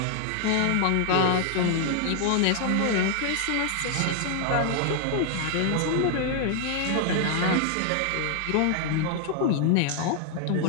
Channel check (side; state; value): both; different; correlation 0.00